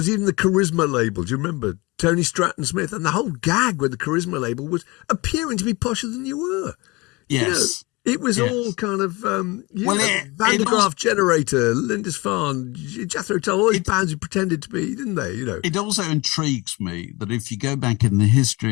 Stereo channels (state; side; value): quieter; right; 24.2 dB